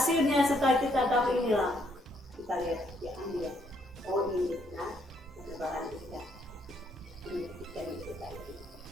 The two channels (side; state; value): both; normal; correlation 0.71